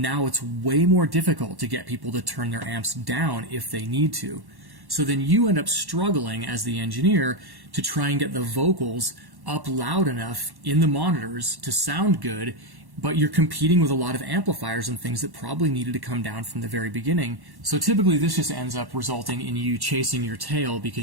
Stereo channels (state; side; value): late; left; 1.1 ms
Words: now it's way more difficult to get people to turn their amps down if they need to. So then you end up struggling as the engineer to try and get the vocals up loud enough in the monitors to sound good, but you're competing with a lot of amplifiers and things that probably needed to come down from the very beginning. So typically this just ends up resulting in you chasing your tail